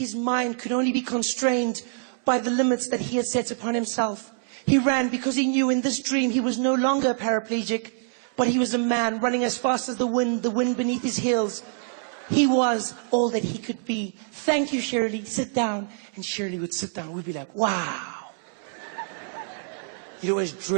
mind could only be constrained by the limits that he had set upon himself. He ran because he knew in this dream he was no longer a paraplegic, but he was a man running as fast as the wind beneath his heels. He was all that he could be. Thank you, Shirley. Sit down. And Shirley would sit down. We'd be like, wow. You'd always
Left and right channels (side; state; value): left; silent; digital silence